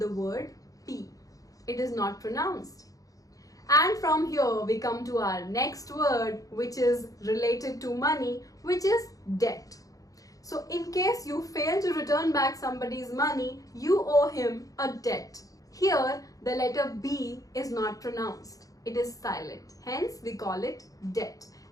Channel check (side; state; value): right; late; 0.17 ms